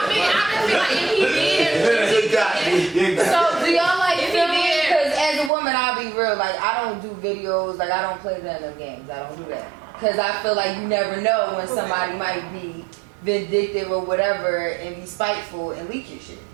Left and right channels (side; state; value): left; drops out; at 5.5 s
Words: feel like if he did. You got me. So, do y'all like If he filming? did. Because as a woman, I'll be real. Like, I don't do videos. Like, I don't play none of them games. I don't do that. Because I feel like you never know when somebody might be vindictive or whatever and be spiteful and leak your shit.